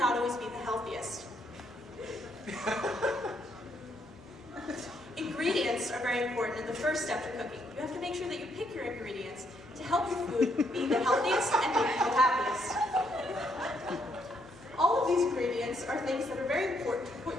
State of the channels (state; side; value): normal; both; correlation 0.74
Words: always be the healthiest. Ingredients are very important in the first step to cooking. You have to make sure that you pick your ingredients to help your food be the healthiest and make you the happiest. All of these ingredients are things that are very important to put